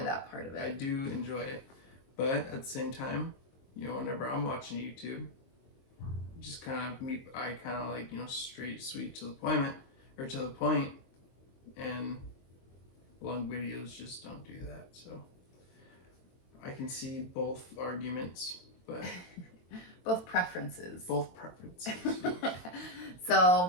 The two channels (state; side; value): late; right; 22 ms